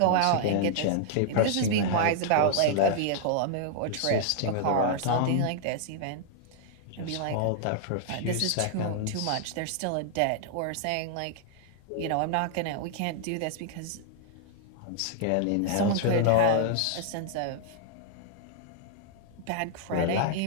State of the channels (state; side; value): different; both; correlation -0.01